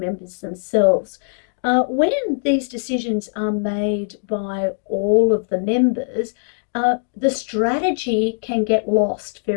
themselves. When these decisions are made by all of the members, the strategy can get lost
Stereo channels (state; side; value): silent; right; digital silence